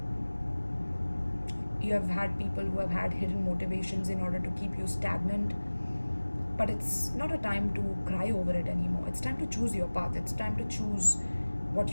You have had people who have had hidden motivations in order to keep you stagnant. But it's not a time to cry over it anymore. It's time to choose your path. It's time to choose what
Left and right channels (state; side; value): inverted; both; correlation -1.00